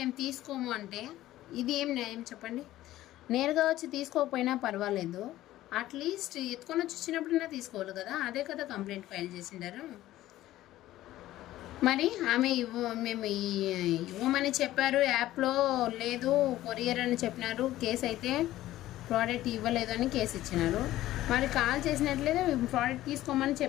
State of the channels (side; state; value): right; quieter; 15.0 dB